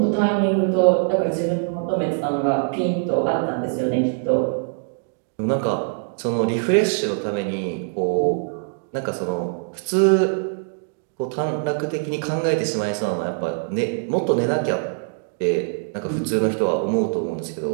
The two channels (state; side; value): silent; left; digital silence